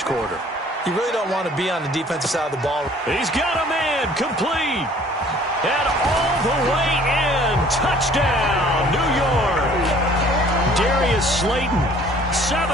quarter. You really don't want to be on the defensive side of the ball. He's got a man, complete. And all the way in. Touchdown, New York. Darius Slayton,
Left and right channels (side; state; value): both; normal; correlation 0.54